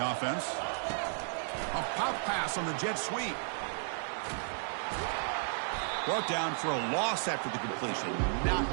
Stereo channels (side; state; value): left; silent; digital silence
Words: offense. A pop pass on the jet sweep. Brought down for a loss after the completion. Not